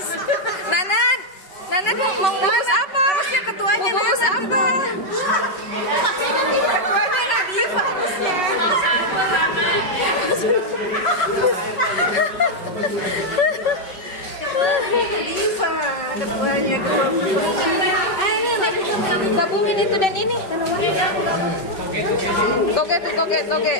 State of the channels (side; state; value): right; late; 5.2 ms